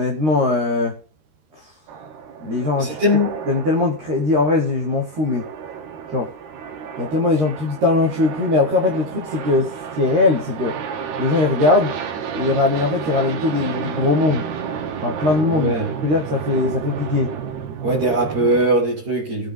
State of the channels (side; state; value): left; late; 13 ms